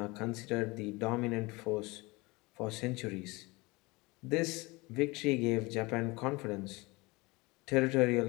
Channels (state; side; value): quieter; right; 24.2 dB